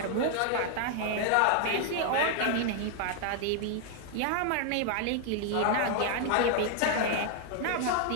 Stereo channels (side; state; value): both; different; correlation 0.00